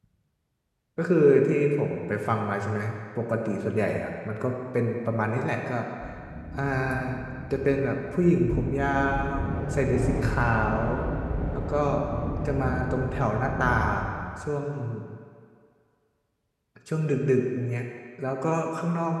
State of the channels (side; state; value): both; identical; correlation 1.00